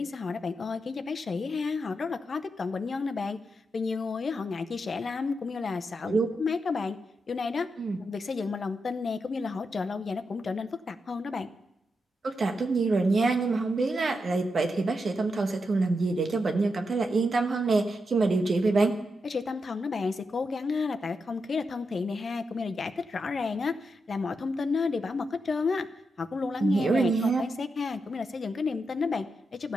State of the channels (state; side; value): normal; both; correlation 0.85